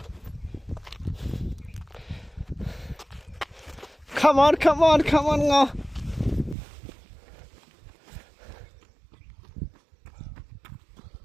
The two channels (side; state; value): left; drops out; at 6.6 s